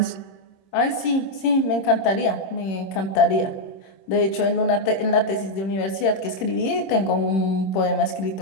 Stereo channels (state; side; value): late; right; 26 ms